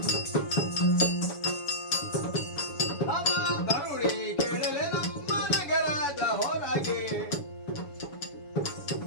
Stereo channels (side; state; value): right; late; 7.0 ms